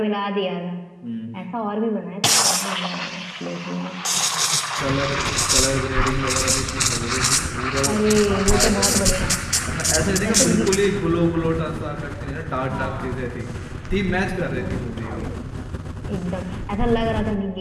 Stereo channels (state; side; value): identical; both; correlation 1.00